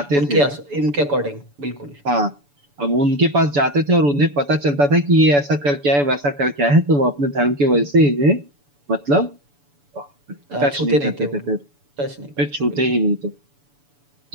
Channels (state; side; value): late; left; 7.0 ms